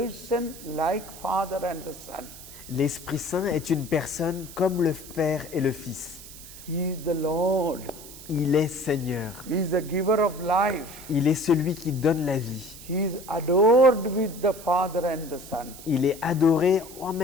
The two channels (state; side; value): noise; right; hiss, 16 dB below the sound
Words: like Father and the Son. L'Esprit Saint est une personne comme le Père et le Fils. He is the Lord. Il est Seigneur. He is the giver of life. Il est celui qui donne la vie. He is adored with the Father and the Son. Il est adoré en